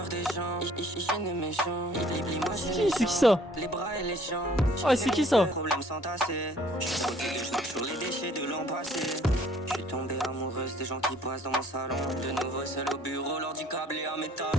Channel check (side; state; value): both; normal; correlation 0.57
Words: des gens, je ne méchant. C'est qui ça? Les bras et les jambes. Ah, c'est qui ça? Problème sans tasser. Je suis protégé, je marche sur les déchets de l'an passé. Je suis tombé amoureuse des gens qui passent dans mon salon. De nouveau seul au bureau, l'ordi câblé à mes talons.